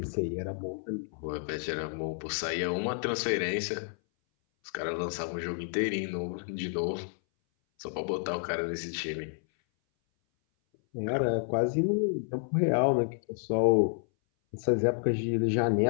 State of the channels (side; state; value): right; silent; 58 dB below the other